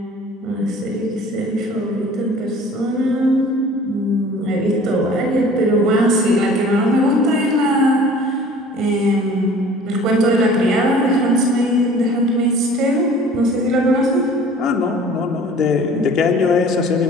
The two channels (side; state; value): both; normal; correlation 0.47